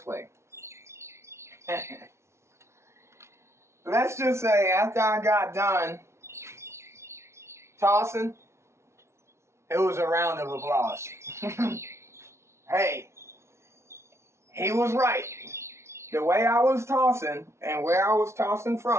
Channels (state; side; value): late; left; 0.13 ms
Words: way. Let's just say, after I got done tossing, it was a round of applause. Hey, he was right. The way I was tossing and where I was tossing